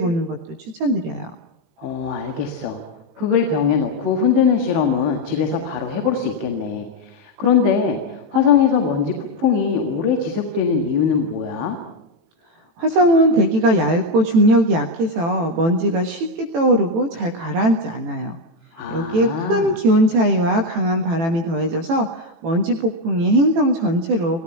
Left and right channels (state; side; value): late; left; 18 ms